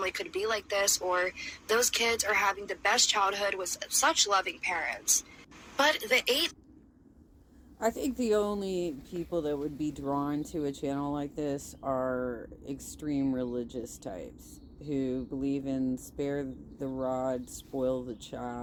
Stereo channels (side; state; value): both; identical; correlation 1.00